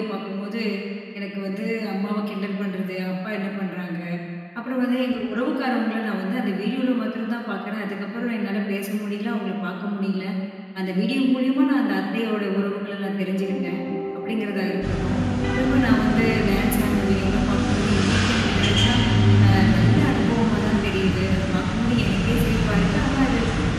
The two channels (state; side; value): identical; both; correlation 1.00